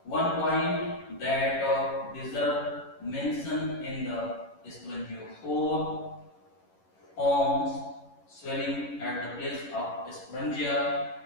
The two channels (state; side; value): late; right; 11 ms